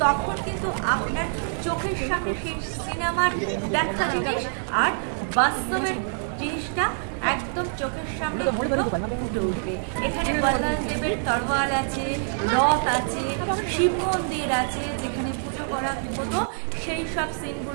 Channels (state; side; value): silent; left; digital silence